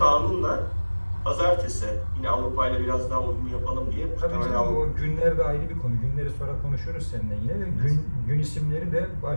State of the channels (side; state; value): both; inverted; correlation -1.00